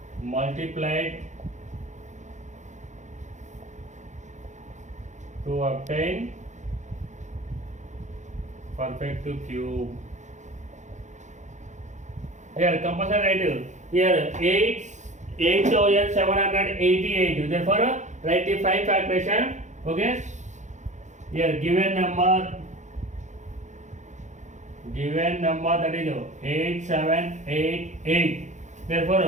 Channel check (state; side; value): late; left; 0.35 ms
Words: multiplied to obtain perfect cube. Here compulsory write here 8788. Therefore write the 5 factorization. Okay. Here given number that is 8788.